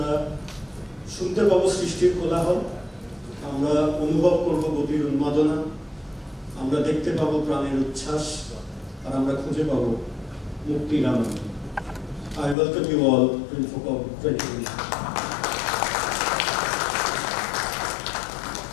শুনতে পাবো সৃষ্টির কোলাহল, আমরা অনুভব করব গতির উন্মাদনা, আমরা দেখতে পাবো প্রাণের উচ্ছ্বাস, আর আমরা খুঁজে পাবো মুক্তির আনন্দ। I welcome you all to Infocom 2020.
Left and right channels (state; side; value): drops out; right; at 12.6 s